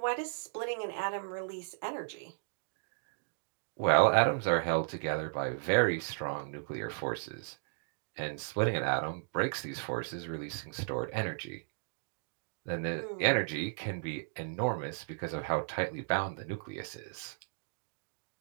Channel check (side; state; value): left; silent; digital silence